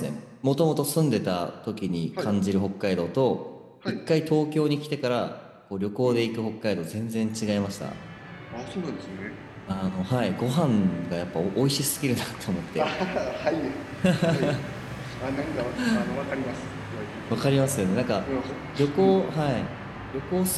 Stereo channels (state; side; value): identical; both; correlation 1.00